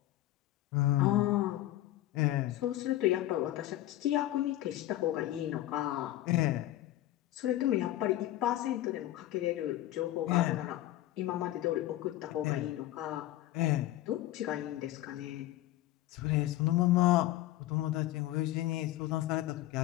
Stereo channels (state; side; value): quieter; right; 15.0 dB